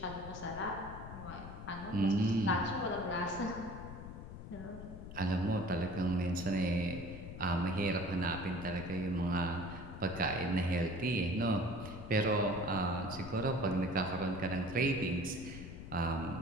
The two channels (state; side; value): noise; left; rumble, 11 dB below the sound